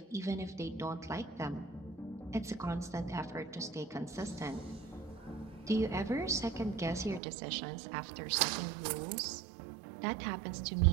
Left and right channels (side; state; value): left; drops out; at 7.2 s